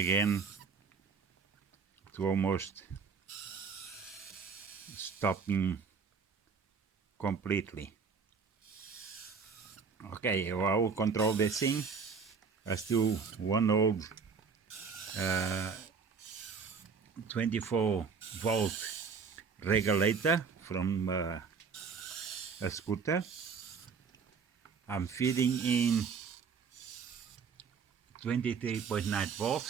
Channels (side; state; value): left; quieter; 5.6 dB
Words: to almost stopping completely. Okay, well, I will control this thing. I still one old 24 volt regulator from a scooter. I'm feeding in 23.9